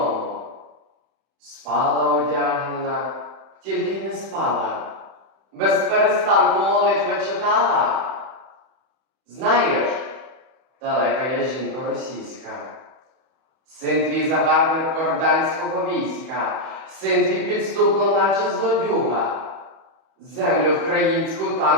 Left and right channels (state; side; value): late; left; 31 ms